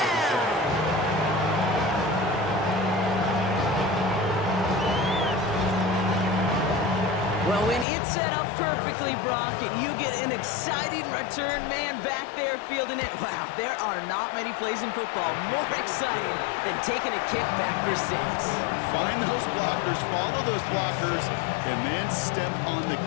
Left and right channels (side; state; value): right; drops out; at 7.9 s